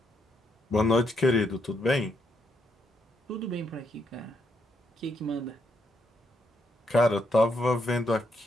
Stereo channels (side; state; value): both; normal; correlation 0.76